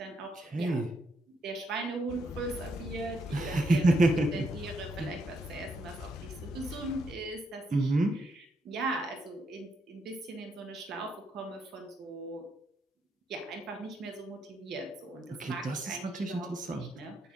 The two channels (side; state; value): both; normal; correlation 0.78